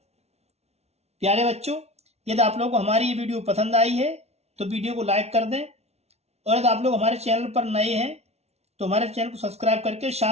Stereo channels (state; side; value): late; left; 0.31 ms